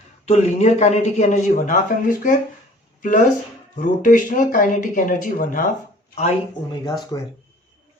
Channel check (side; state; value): both; normal; correlation 0.51